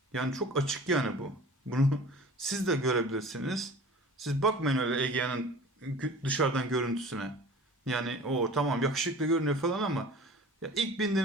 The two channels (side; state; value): both; normal; correlation 0.42